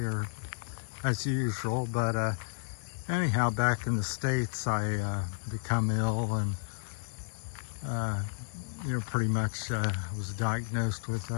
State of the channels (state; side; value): silent; right; digital silence